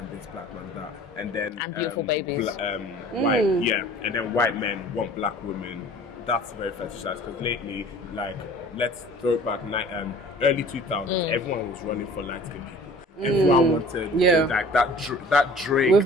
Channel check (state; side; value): normal; both; correlation 0.47